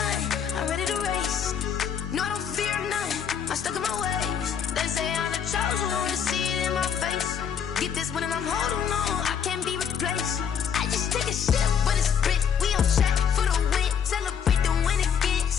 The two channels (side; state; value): right; quieter; 7.7 dB